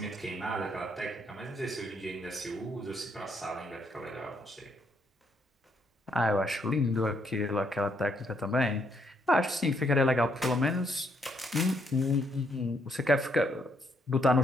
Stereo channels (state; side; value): normal; both; correlation 0.73